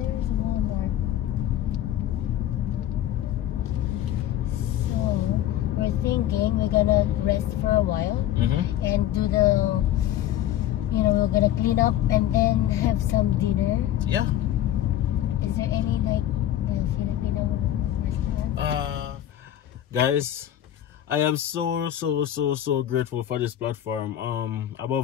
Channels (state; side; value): quieter; right; 12.2 dB